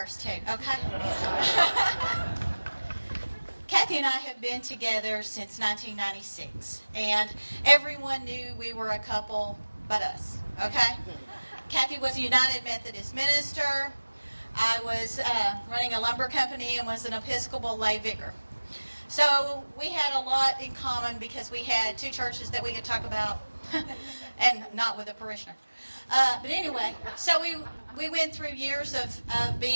too, okay? Kathy and I have been together since 1996, and everyone knew we were a couple but us, okay? Kathy was a United Methodist minister. I was running a lumber company and was an Episcopal lay vicar. So we had a lot in common because we had two churches that we could talk about, and not with a parishioner. But anyway, so we went through years of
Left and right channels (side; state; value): both; inverted; correlation -1.00